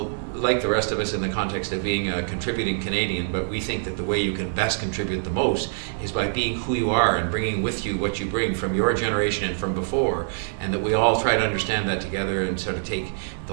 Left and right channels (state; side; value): silent; left; 57 dB below the other